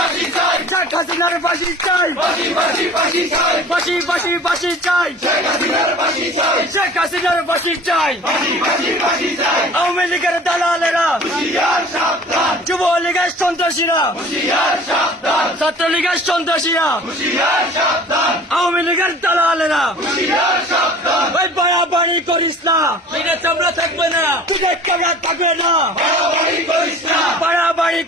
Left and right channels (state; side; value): normal; both; correlation 0.45